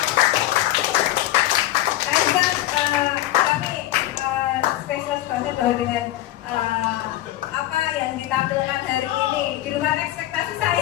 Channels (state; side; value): quieter; right; 14.9 dB